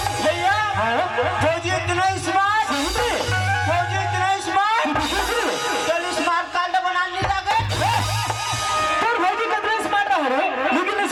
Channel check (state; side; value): identical; both; correlation 1.00